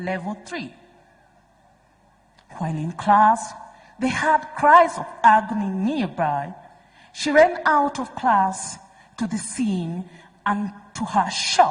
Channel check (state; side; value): identical; both; correlation 1.00